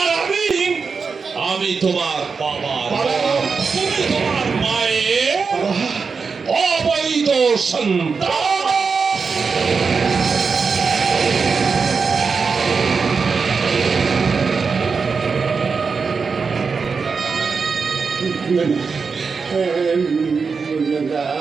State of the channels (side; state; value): left; quieter; 5.1 dB